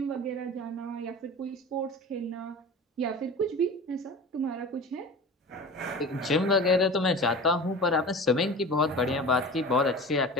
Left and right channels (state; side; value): normal; both; correlation 0.35